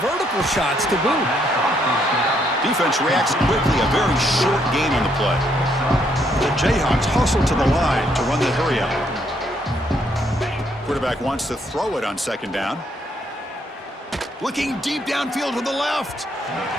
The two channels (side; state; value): both; normal; correlation 0.72